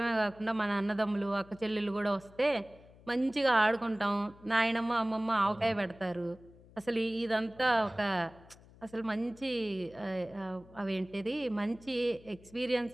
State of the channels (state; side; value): noise; left; hum, 23 dB below the sound